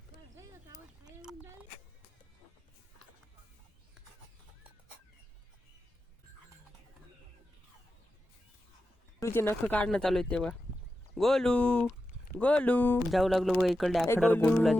तुझे नख काढणं चालू आहे तेव्हा. गोलू गोलू जाऊ लागलो बघा इकडे आखड्यावर. गोलूला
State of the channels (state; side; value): normal; both; correlation 0.91